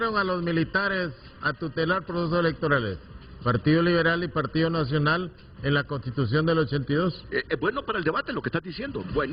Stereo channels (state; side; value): identical; both; correlation 1.00